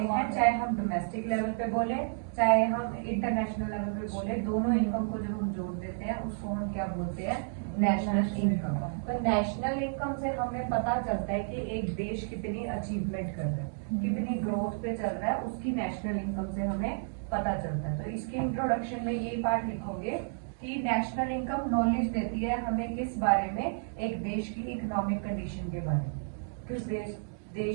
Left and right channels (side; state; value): left; silent; digital silence